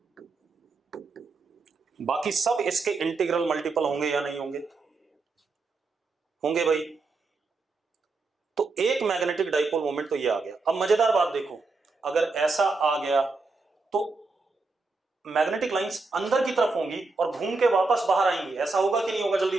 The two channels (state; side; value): quieter; left; 3.9 dB